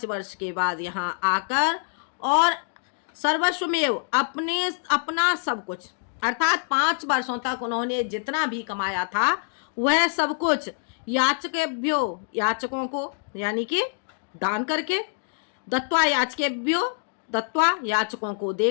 वर्ष के बाद यहाँ आकर और सर्वस्वमेव अपना सब कुछ, अर्थात 5 वर्षों तक उन्होंने जितना भी कमाया था वह सब कुछ याचकेभ्यो, याचकों को यानी कि दान करके, दत्त्वा याचकेभ्यो, दत्त्वा याचकों को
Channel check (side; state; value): right; silent; digital silence